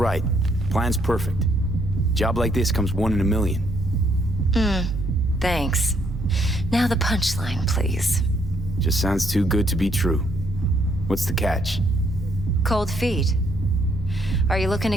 Plan's perfect. Job like this comes 1 in a million. Thanks. Now the punchline, please. Just sounds too good to be true. What's the catch? Cold feet. Are you looking to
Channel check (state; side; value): normal; both; correlation 0.70